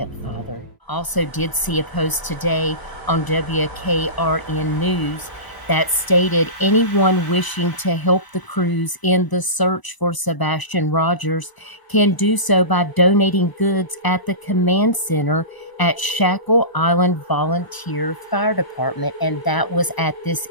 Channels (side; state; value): right; late; 1.0 ms